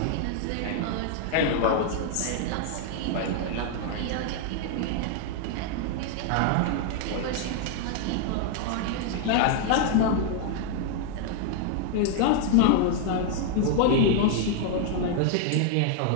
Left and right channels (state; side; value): different; both; correlation 0.00